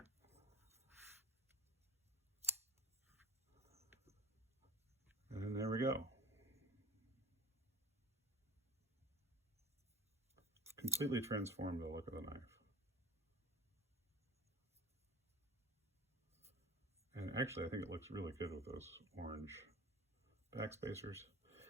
And there we go. Completely transformed the look of the knife. And actually, I think it looks really good with those orange backspacers.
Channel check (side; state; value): both; normal; correlation 0.42